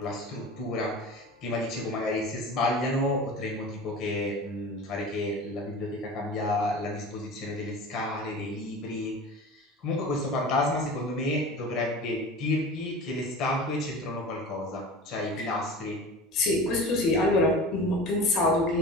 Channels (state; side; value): normal; both; correlation 0.36